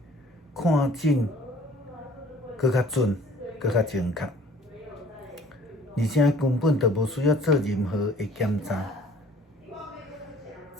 看诊搁较准，搁较精确，而且根本就无需要做任何的检查。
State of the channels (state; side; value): normal; both; correlation 0.53